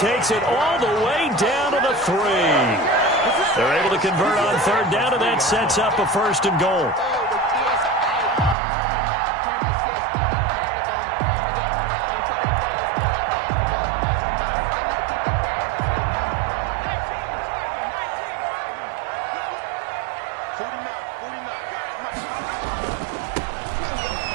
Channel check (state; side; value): drops out; left; at 8.6 s